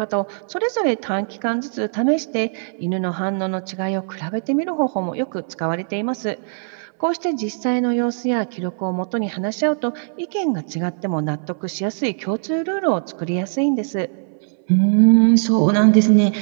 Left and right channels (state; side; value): silent; left; 63 dB below the other